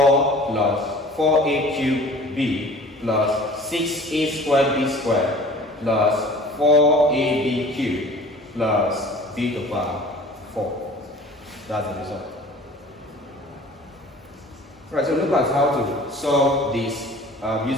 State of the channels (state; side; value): normal; both; correlation 0.46